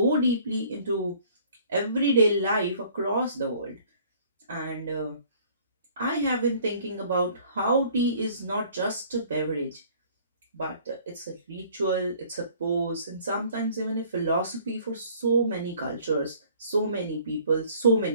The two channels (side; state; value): both; inverted; correlation -0.55